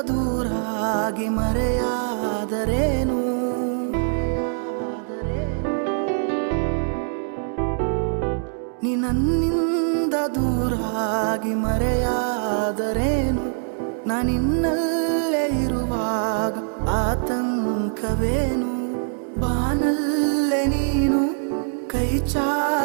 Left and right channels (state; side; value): silent; left; 63 dB below the other